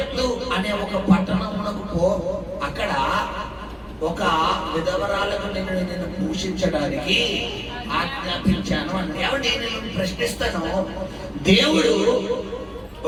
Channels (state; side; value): identical; both; correlation 1.00